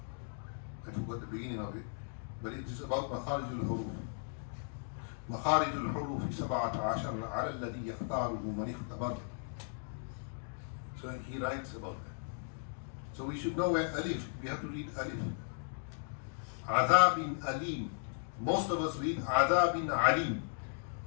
I forgot the beginning of it, but it is about makharijul huruf. Makharijul huruf 17 على الذي يختاره من اختبر. So he writes about that. So we should know where alif, we have to read alif. Adhabin alim. Most of us read adhabin alim.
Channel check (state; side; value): silent; right; digital silence